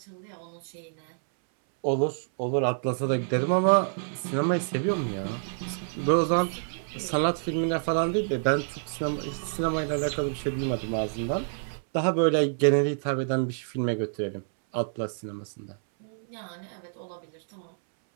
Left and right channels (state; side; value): silent; left; 59 dB below the other